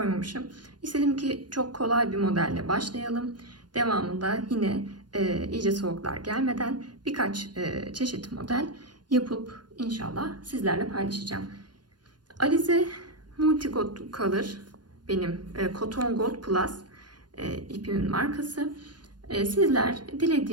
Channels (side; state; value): left; late; 0.70 ms